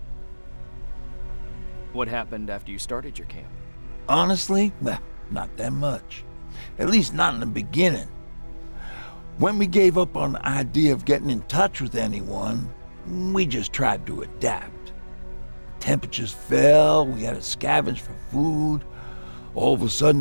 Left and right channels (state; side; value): inverted; both; correlation -1.00